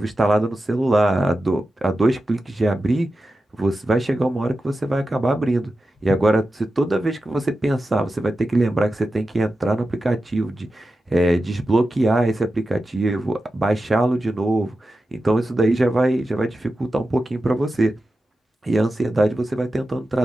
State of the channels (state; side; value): normal; both; correlation 0.92